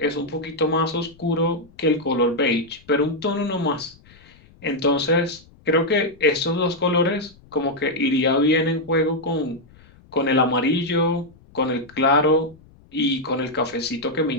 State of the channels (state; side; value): noise; left; rumble, 26 dB below the sound